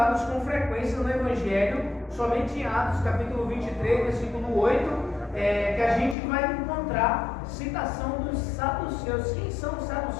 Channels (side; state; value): right; drops out; at 6.2 s